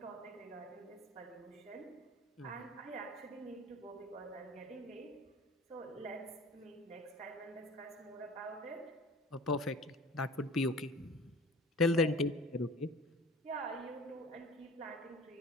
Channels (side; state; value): both; normal; correlation 0.42